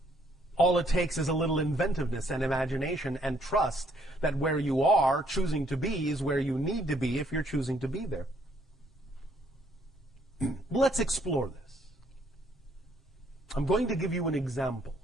All it takes is a little inventiveness and imagination and trust that where you are choosing to be is where you need to be if you're choosing to be there. Let's explore this. I'm going to give you an example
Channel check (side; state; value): both; normal; correlation 0.67